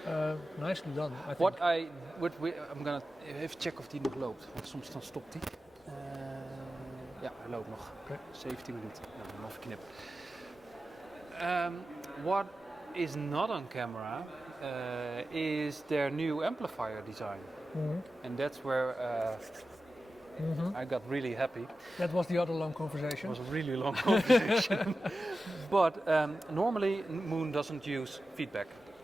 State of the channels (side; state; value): both; normal; correlation 0.93